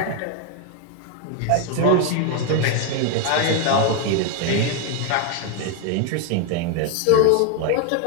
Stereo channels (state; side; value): different; both; correlation 0.01